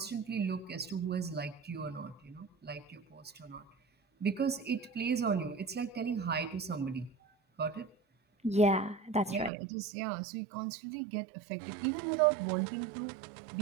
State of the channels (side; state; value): left; drops out; at 9.5 s